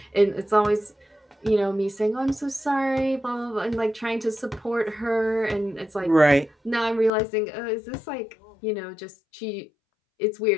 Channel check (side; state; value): right; drops out; at 7.1 s